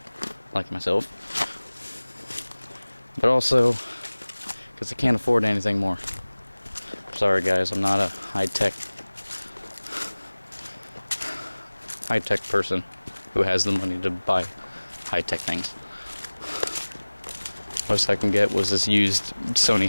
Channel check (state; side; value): inverted; both; correlation -1.00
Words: myself, but also because I can't afford anything more. Sorry guys, I'm not a high-tech person who has the money to buy high-tech things. Most I can get was this used Sony